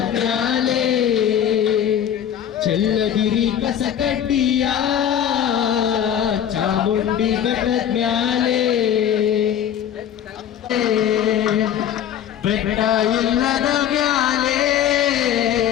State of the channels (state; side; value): quieter; right; 9.7 dB